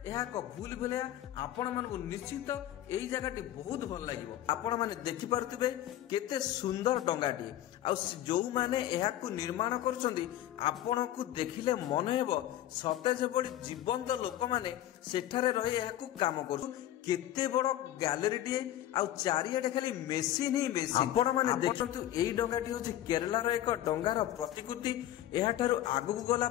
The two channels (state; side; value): quieter; right; 13.0 dB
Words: एहा को भूल भुलिया आपण मानकु निश्चित एई जगहटी बहुत भल लागिवो। आपण माने देखि पारुथिबे केते सुंदर डंगाटी आ जो माने एहा को निर्माण करछंदी आपणकु देखिले मन हेबो सते जेबडी जीवंत लोक माने सेठारे रही एहाकु काम करू। केते बड़ गैलरी टीए आ चारियाडे खाली मेसिन ही मेसिन। आपण माने देखंतु एई डंगाटी होची केरला रो एक डंगार प्रतिकृति। एहा ठारू आगु गला